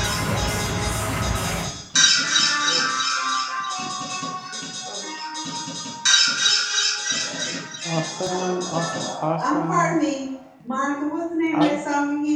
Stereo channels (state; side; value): identical; both; correlation 1.00